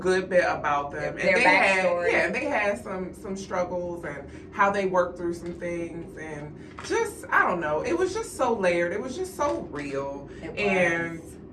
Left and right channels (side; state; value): both; identical; correlation 1.00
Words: bit about them. Their backstory. They had some struggles and how they worked through some things, and just, I don't know, it was just so layered. It was just so real. And